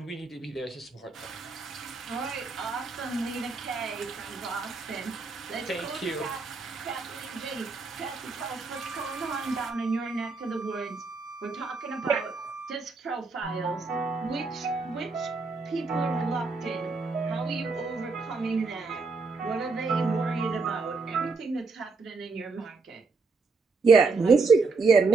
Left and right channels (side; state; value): left; quieter; 4.2 dB